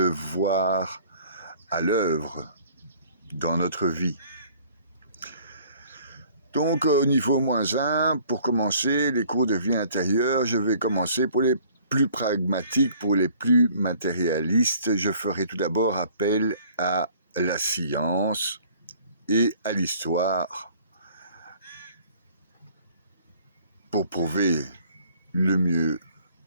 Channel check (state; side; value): inverted; both; correlation -0.55